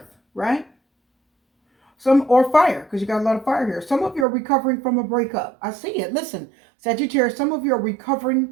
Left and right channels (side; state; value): left; drops out; at 4.2 s